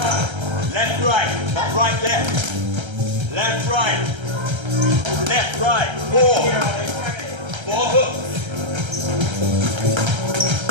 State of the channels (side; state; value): left; late; 1.3 ms